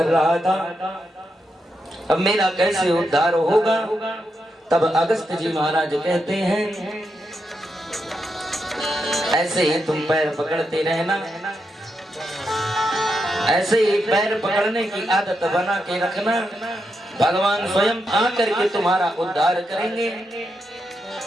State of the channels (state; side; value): normal; both; correlation 0.84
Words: रहा था अब मेरा कैसे उद्धार होगा। तब अगस्त जी महाराज कहते हैं ऐसे ही तुम पैर पकड़ते रहना, ऐसे ही पैर पकड़ने की आदत बना के रखना, भगवान स्वयं आकर के तुम्हारा उद्धार करेंगे।